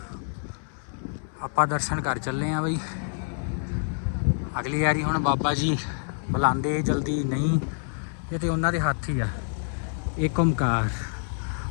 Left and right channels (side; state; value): right; silent; 60 dB below the other